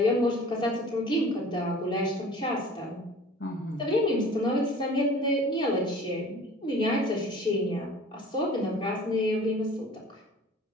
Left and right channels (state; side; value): normal; both; correlation 0.45